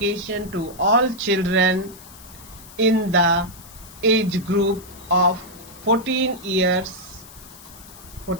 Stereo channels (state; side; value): noise; left; hiss, 19 dB below the sound